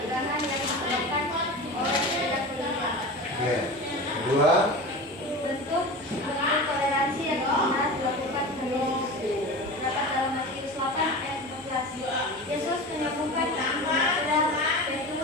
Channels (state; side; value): normal; both; correlation 0.30